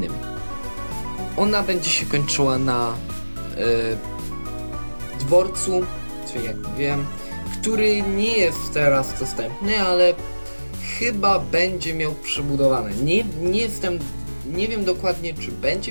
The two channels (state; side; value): inverted; both; correlation -1.00